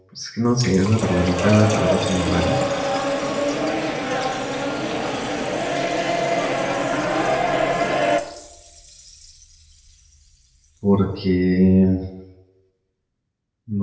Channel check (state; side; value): identical; both; correlation 1.00